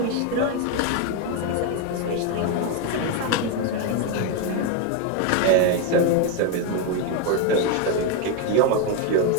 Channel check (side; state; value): both; different; correlation 0.02